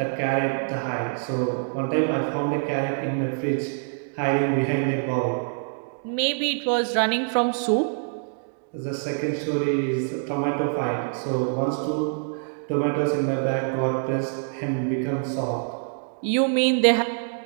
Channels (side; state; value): left; silent; digital silence